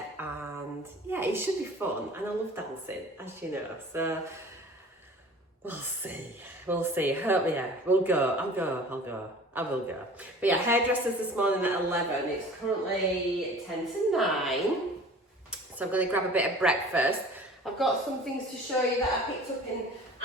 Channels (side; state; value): both; normal; correlation 0.44